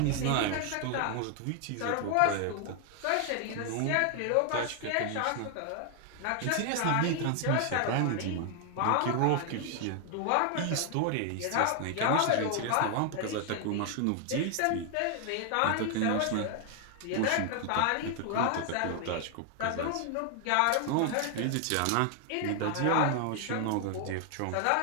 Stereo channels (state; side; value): different; both; correlation 0.00